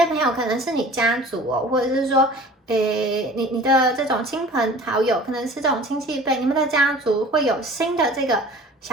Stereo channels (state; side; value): normal; both; correlation 0.44